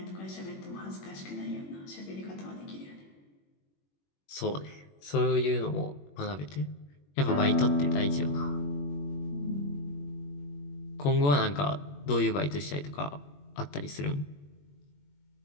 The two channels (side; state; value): right; late; 21 ms